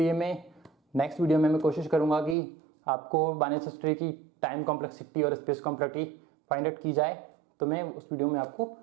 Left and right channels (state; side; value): drops out; left; at 2.4 s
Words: मैं नेक्स्ट वीडियो में मैं कोशिश करूंगा कि आपको बाइनरी सर्च ट्री की टाइम कॉम्प्लेक्सिटी और स्पेस कॉम्प्लेक्सिटी फाइंड आउट की जाए, तो मैं उस वीडियो में आपको